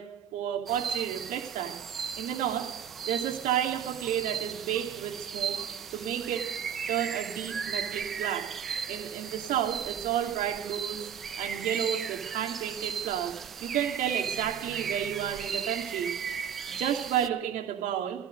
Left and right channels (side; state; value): left; quieter; 8.8 dB